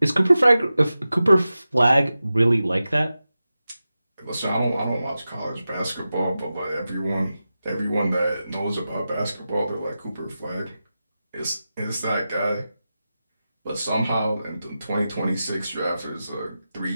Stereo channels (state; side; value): inverted; both; correlation -0.93